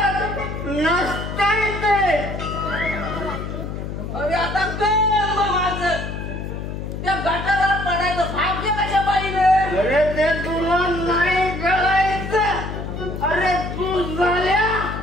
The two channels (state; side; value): noise; left; hum, 6 dB below the sound